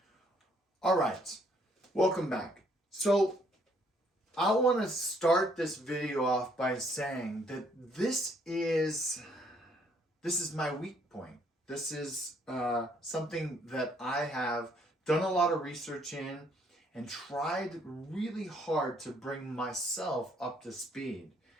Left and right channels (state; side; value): normal; both; correlation 0.67